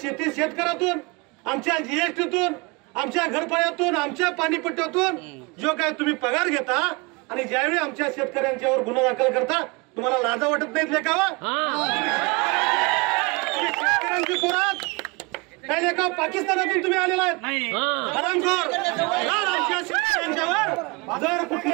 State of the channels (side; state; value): left; quieter; 27.8 dB